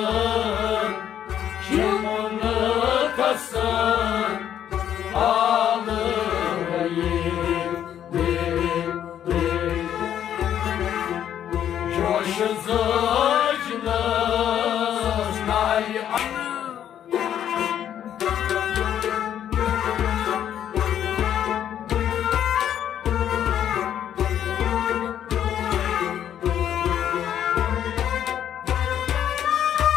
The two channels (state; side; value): quieter; right; 10.1 dB